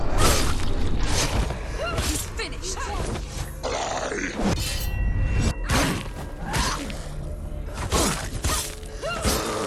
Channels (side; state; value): both; identical; correlation 1.00